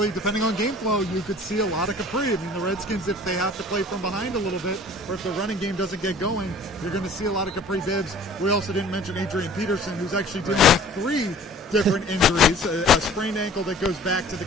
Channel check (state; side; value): normal; both; correlation 0.49